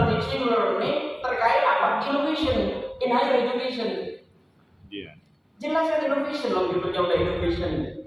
teaching learning terkait apa? Innovation in higher education. Iya. Jelas kan innovation loh, judulnya udah innovation.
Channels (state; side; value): identical; both; correlation 1.00